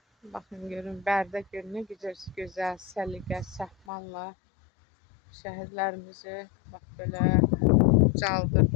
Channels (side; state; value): right; drops out; at 3.8 s